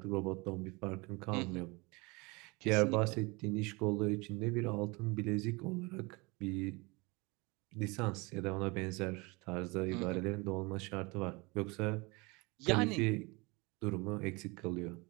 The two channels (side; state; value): left; quieter; 26.5 dB